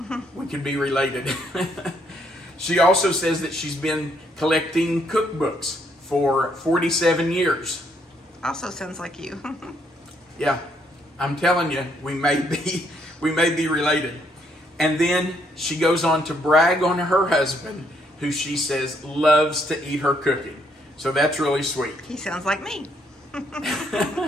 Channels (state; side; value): normal; both; correlation 0.71